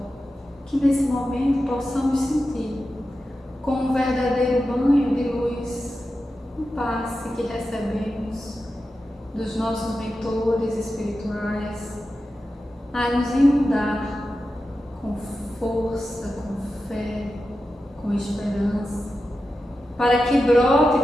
Que nesse momento possamos sentir como um verdadeiro banho de luz, um passe que recebemos dos nossos mentores espirituais, a nos inundar com força, com fé, com esperança, para que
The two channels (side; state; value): both; normal; correlation 0.91